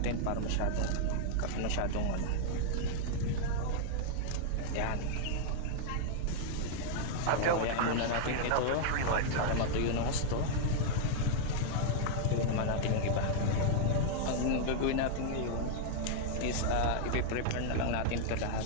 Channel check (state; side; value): different; both; correlation -0.01